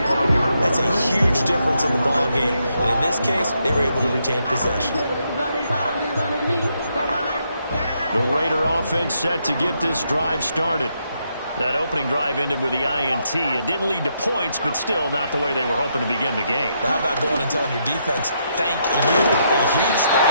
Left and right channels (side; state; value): both; inverted; correlation -0.78